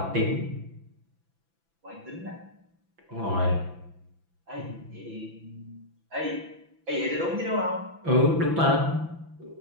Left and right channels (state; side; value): late; left; 6.0 ms